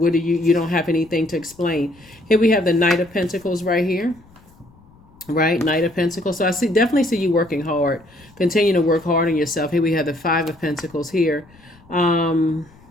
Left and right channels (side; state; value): left; noise; rumble, 27 dB below the sound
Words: don't have anything to explain. Here we have the Knight of Pentacles right here. Right, Knight of Pentacles. So I definitely see you working hard. Continue to work hard on yourself. Here we have the Five of Pentacles here. I